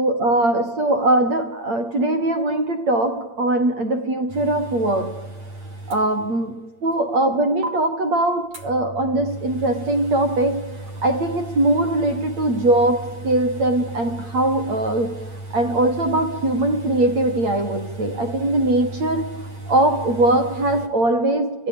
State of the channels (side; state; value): left; late; 8.7 ms